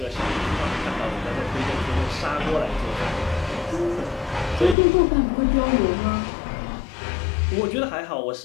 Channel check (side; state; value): right; drops out; at 4.8 s